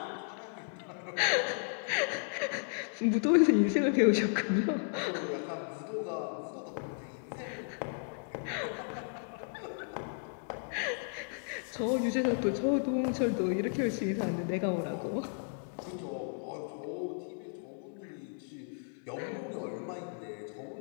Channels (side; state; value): right; silent; 55 dB below the other